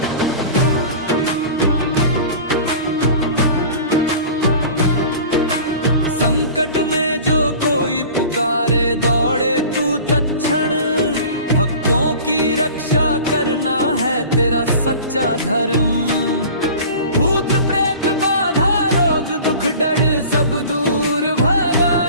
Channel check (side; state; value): both; inverted; correlation -0.40